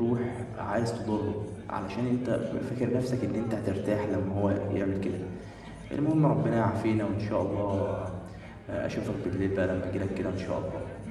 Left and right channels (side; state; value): both; identical; correlation 1.00